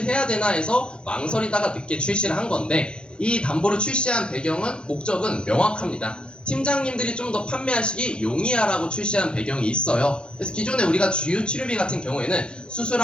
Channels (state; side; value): late; right; 0.054 ms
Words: 해야 되나 해서 망설이다가 늦게 출시를 한 건데, 이 담보를 출시한 배경은, 목적은 명확합니다. 팀장님들이 좀 더 판매하시기 용이하라고 출시한 배경이 있어요. 그래서 기존에 우리가 주요 치료비 같은 경우에는 수술